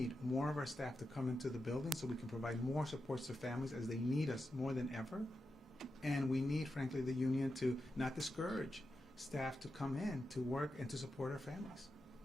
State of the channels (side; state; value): both; normal; correlation 0.89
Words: more of our staff to come into the building so we can provide more supports to families as they need us more than ever. And we need, frankly, the union to not discourage staff to come in to work and to support our families.